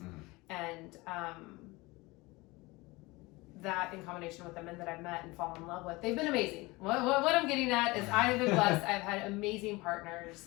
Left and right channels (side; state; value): right; quieter; 22.8 dB